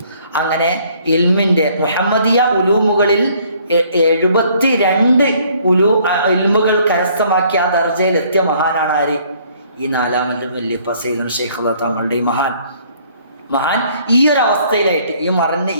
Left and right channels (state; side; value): inverted; both; correlation -0.61